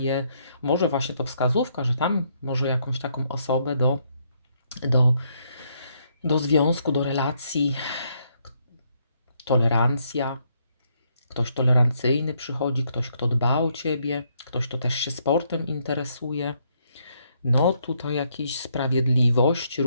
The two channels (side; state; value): both; inverted; correlation -0.73